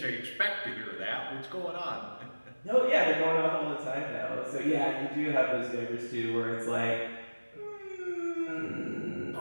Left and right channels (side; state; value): both; inverted; correlation -1.00